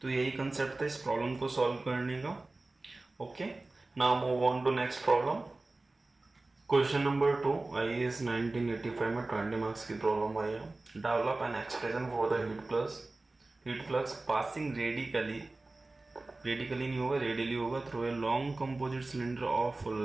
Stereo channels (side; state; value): left; quieter; 3.1 dB